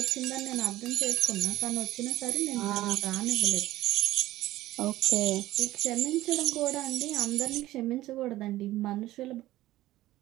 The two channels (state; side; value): quieter; left; 16.0 dB